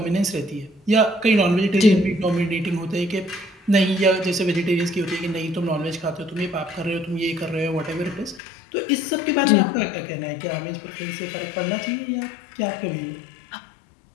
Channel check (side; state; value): right; drops out; at 8.4 s